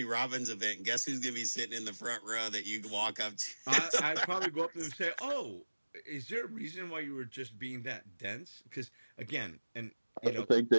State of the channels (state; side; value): inverted; both; correlation -1.00